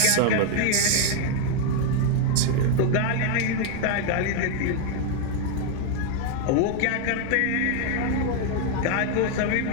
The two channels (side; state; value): both; different; correlation 0.00